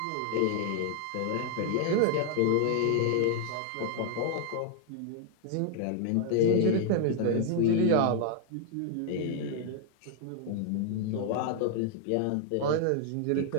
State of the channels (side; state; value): both; different; correlation 0.00